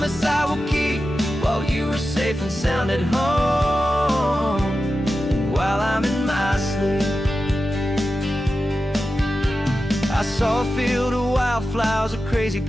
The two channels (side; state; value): both; normal; correlation 0.92